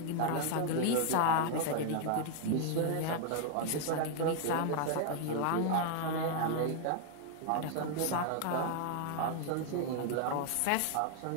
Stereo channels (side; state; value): both; different; correlation 0.00